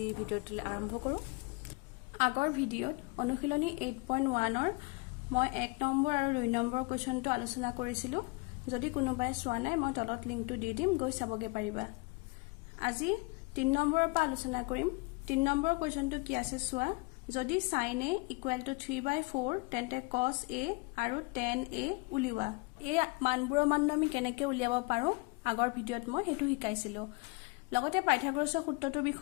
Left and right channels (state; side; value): quieter; right; 27.9 dB